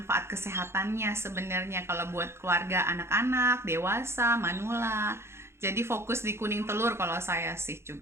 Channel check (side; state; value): left; late; 0.12 ms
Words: kesehatannya sebenarnya kalau buat keluarga, anak-anak, dewasa, manula. Jadi fokus di kuning telur kalau saya sih